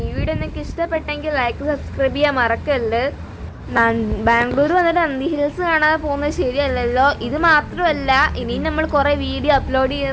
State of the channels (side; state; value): both; identical; correlation 1.00